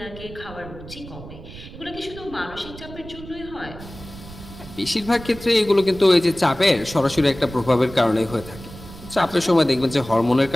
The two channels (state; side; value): noise; right; rumble, 15 dB below the sound